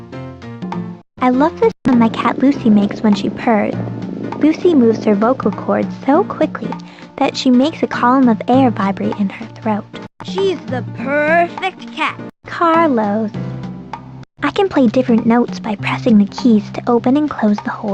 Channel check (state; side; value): identical; both; correlation 1.00